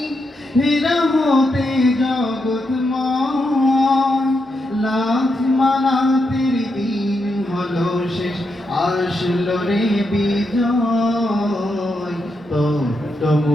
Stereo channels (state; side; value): normal; both; correlation 0.83